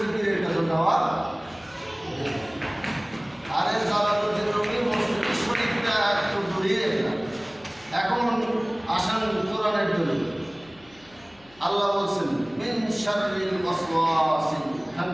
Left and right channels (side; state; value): left; noise; hum, 28 dB below the sound